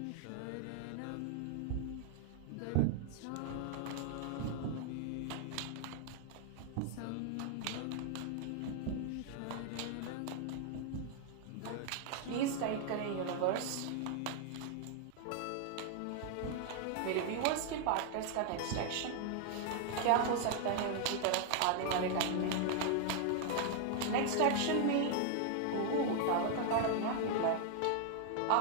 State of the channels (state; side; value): different; both; correlation 0.00